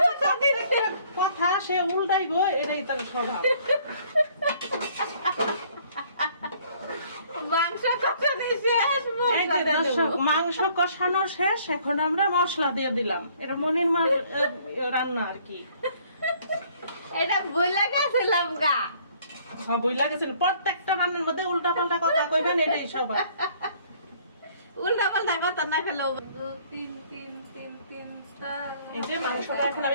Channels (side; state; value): both; inverted; correlation -0.60